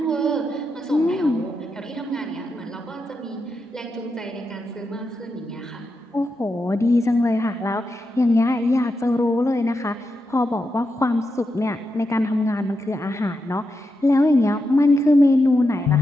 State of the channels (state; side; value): normal; both; correlation 0.86